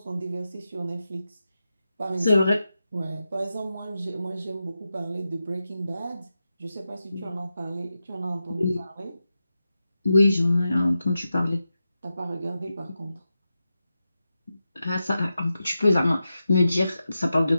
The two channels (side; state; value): both; inverted; correlation -0.90